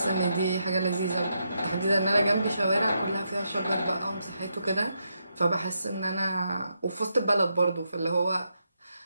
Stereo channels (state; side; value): inverted; both; correlation -0.82